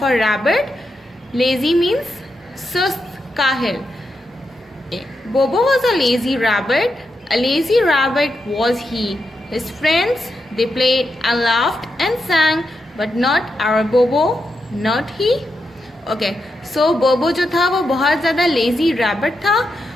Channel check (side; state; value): both; normal; correlation 0.85